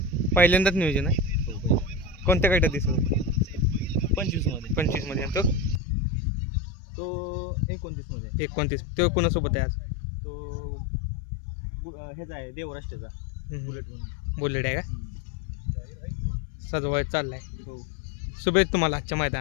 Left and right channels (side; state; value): right; drops out; at 5.8 s